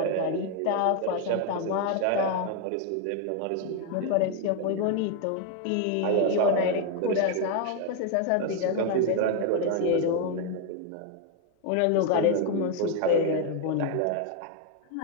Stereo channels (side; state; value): both; different; correlation 0.01